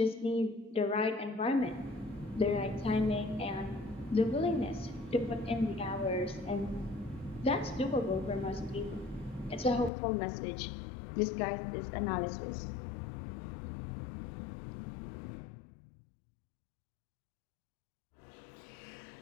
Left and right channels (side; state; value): right; drops out; at 9.9 s